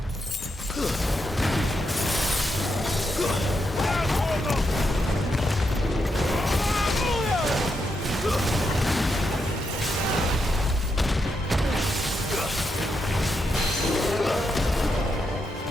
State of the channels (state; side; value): normal; both; correlation 0.83